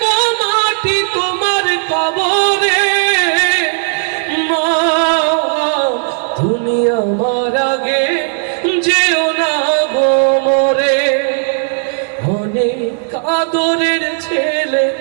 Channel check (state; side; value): silent; left; digital silence